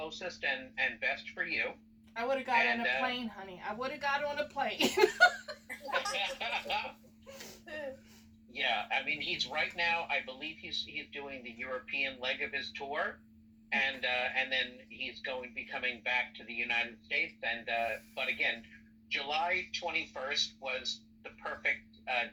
and best for you. I would have got on a plane, honey. I would have got on a plane. Yeah, I mean, he's right now, I believe he's doing the European leg of his tour, and then he's going to be coming back to the United States. And but again, July 21st was the perfect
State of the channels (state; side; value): identical; both; correlation 1.00